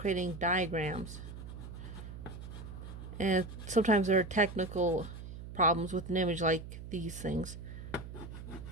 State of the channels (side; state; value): right; noise; hum, 11 dB below the sound